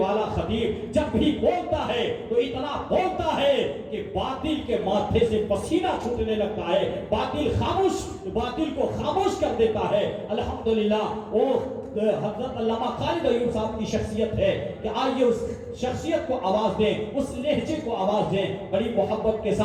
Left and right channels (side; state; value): both; identical; correlation 1.00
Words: خطیب جب بھی بولتا ہے تو اتنا بولتا ہے کہ باطل کے ماتھے سے پسینہ چھوٹنے لگتا ہے، باطل کو خاموش کر دیتا ہے۔ الحمدللہ وہ حضرت علامہ خالد ایوب صاحب کی شخصیت ہے کہ آئیے اس شخصیت کو آواز دیں، اس لہجے کو آواز دیں۔ بڑی محبت کے